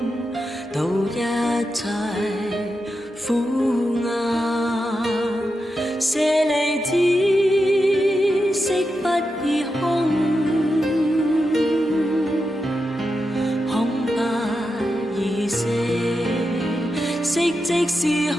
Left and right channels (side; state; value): both; normal; correlation 0.88